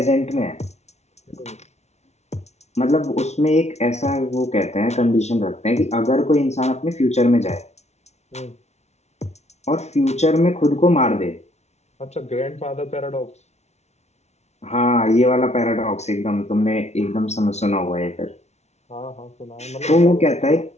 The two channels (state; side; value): late; right; 0.32 ms